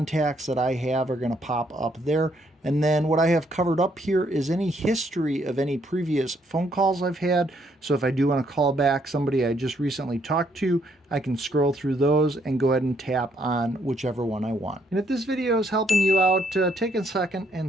that I have are going to pop up there. And then what I have covered up here is any history of any previous phone calls I've had. So if I do want to call back somebody I just recently talked to, I can scroll through those and go ahead and tap on whichever one I want. And if this video is helping you out, take a second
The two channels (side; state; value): both; normal; correlation 0.70